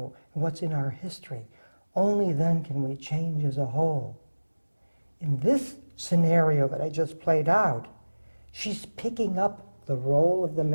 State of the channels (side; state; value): both; inverted; correlation -1.00